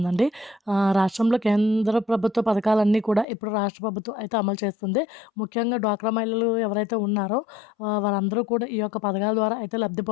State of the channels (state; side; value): drops out; right; at 3.2 s